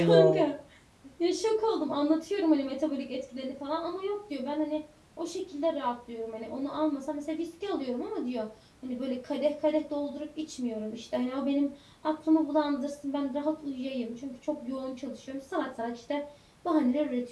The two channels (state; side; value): identical; both; correlation 1.00